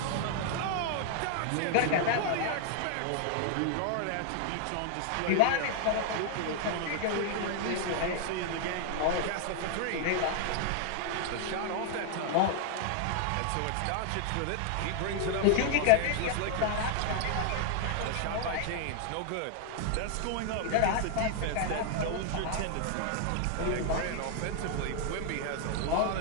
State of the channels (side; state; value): both; different; correlation 0.00